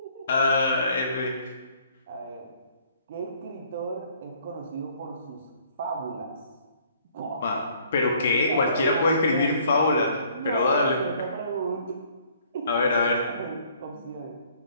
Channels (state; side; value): inverted; both; correlation -0.60